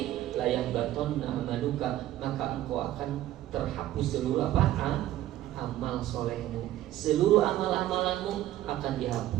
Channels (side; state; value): left; quieter; 13.8 dB